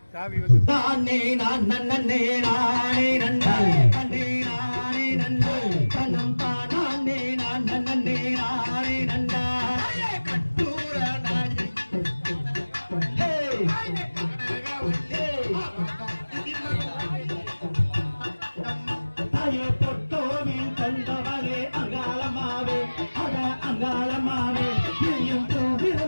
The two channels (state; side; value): inverted; both; correlation -1.00